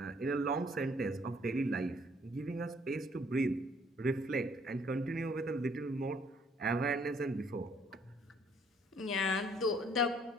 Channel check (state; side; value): normal; both; correlation 0.63